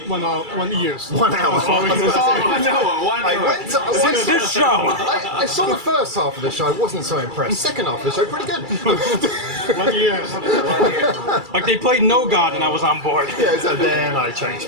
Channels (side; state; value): left; late; 2.3 ms